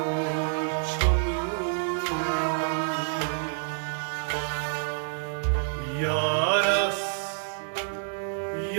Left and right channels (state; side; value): silent; left; digital silence